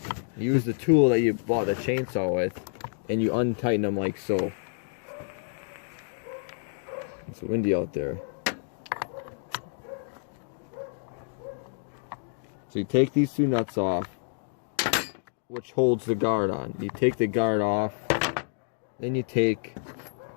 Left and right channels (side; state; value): right; silent; digital silence